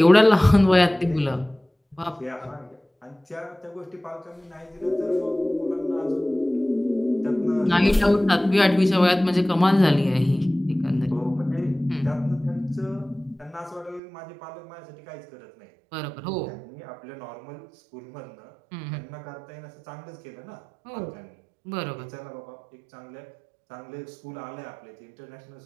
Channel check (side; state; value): left; drops out; at 14.0 s